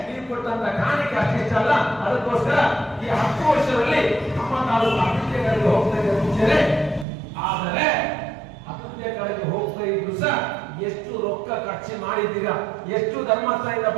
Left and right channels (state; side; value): drops out; left; at 7.1 s